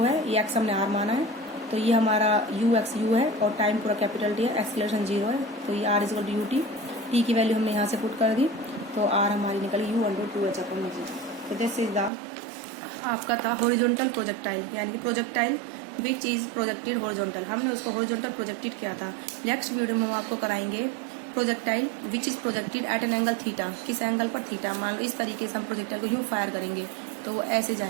है, ये एक्स हमने आर माना है, तो ये हमारा यू एक्स यू है और टाइम पूरा कैपिटल टी है, एक्सेलरेशन 0 है, तो ये r is equal to u t. T की वैल्यू हमने यहाँ से पुट कर दी, तो आर हमारी निकली यू अंडर 2h अपॉन में जी। तो दिस इज द आपका था हॉरिजॉन्टल प्रोजेक्टाइल, यानी कि projectile which is projected horizontal. हमने उसको हॉरिजॉन्टल प्रोजेक्टेड किया था। नेक्स्ट वीडियो में हम आपको कराएंगे projectile which is projected at an angle theta, किस एंगल पर थीटा। मान लो इस तरीके से हम प्रोजेक्टाइल को यूँ फायर करेंगे तो वो ऐसे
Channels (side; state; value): left; drops out; at 12.1 s